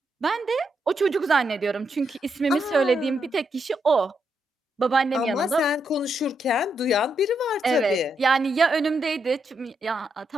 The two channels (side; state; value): both; normal; correlation 0.81